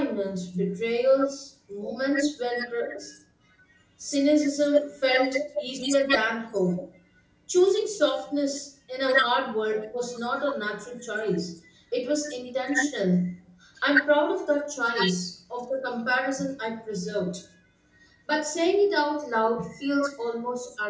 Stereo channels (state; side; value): identical; both; correlation 1.00